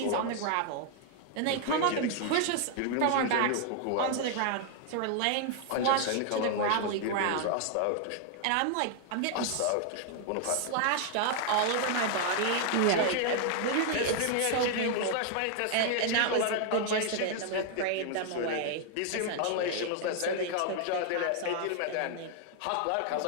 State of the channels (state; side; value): different; both; correlation 0.00